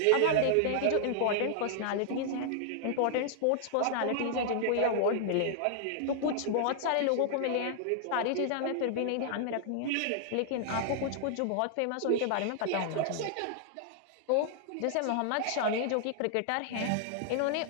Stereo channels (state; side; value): different; both; correlation -0.01